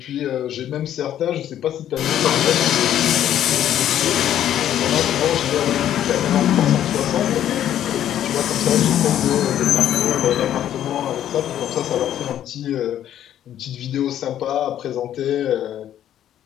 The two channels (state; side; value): quieter; right; 11.1 dB